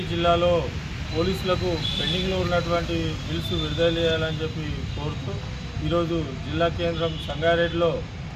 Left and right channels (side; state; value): both; identical; correlation 1.00